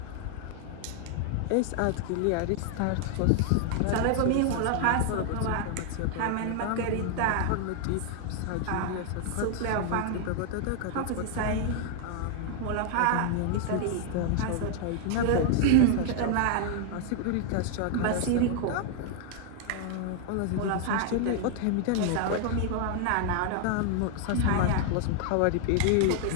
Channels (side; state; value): both; different; correlation 0.00